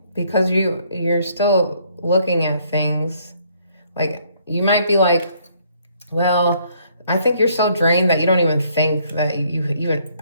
Because you're still looking at things. Like, you might be like, well, I think you're so drained that you don't even think that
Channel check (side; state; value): both; inverted; correlation -0.66